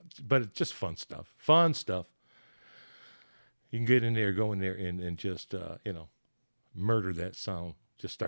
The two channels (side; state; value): both; inverted; correlation -1.00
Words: but it's just fun stuff. Fun stuff. You can get in there, go in there, and just murder that sound. Just